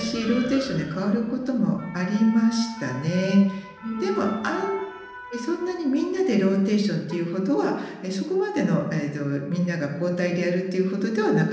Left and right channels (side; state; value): both; identical; correlation 1.00